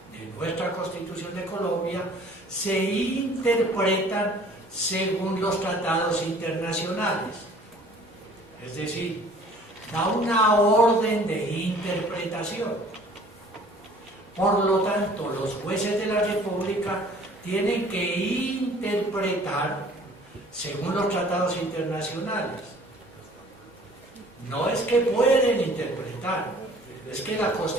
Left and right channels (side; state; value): both; normal; correlation 0.52